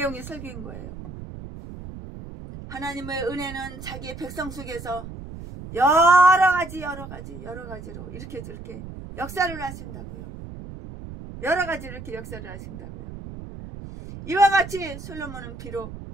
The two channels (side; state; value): right; noise; rumble, 12 dB below the sound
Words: 설교인 거예요. 하나님의 은혜는 자기의 백성 속에서 여러 가지로 이렇게 저렇게 역사를 하신다고요. 여러 가지 이렇게 역사를 하신다고요. 이와 같이 솔로몬은 비록